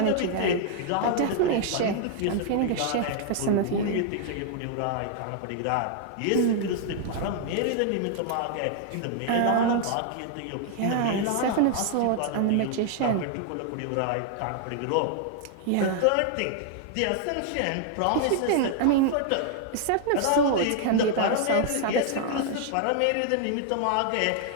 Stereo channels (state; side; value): different; both; correlation 0.00